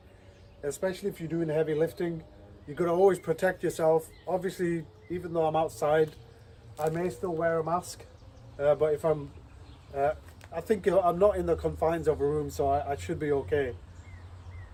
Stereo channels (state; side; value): identical; both; correlation 1.00